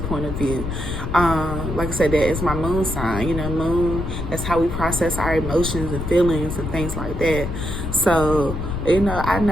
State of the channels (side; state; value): left; noise; rumble, 5 dB below the sound